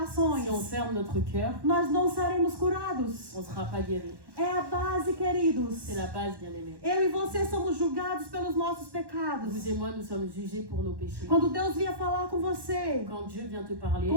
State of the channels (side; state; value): left; late; 1.1 ms